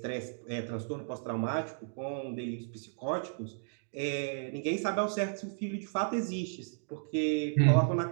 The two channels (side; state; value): left; silent; digital silence